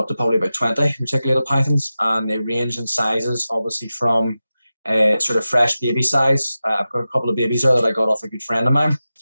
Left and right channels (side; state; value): both; inverted; correlation -0.94